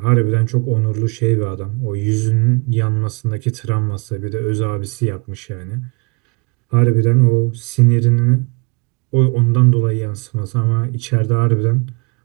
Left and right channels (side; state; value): left; quieter; 31.8 dB